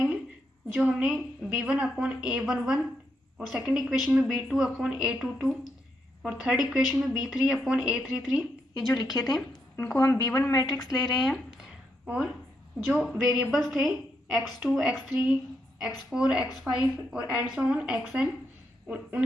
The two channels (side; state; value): both; normal; correlation 0.80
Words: जो हमने b1 अपॉन a11 और सेकंड इक्वेशन में b2 अपॉन a22 और थर्ड इक्वेशन में b3 अपॉन a33 ये जो लिखे थे इनको हम b1 मैट्रिक्स ले रहे हैं। और जो वेरिएबल्स थे x2, x3, x4, x5 और एंड सो ऑन xn,